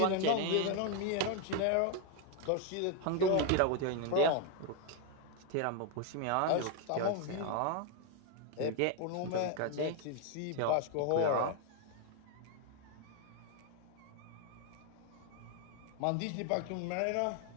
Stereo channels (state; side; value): different; both; correlation 0.01